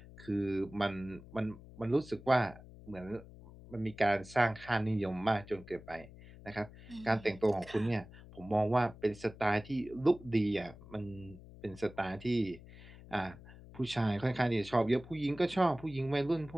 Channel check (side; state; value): left; noise; hum, 18 dB below the sound